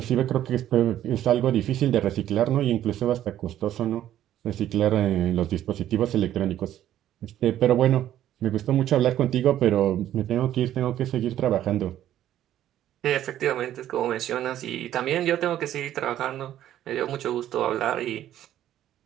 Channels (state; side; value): quieter; left; 12.0 dB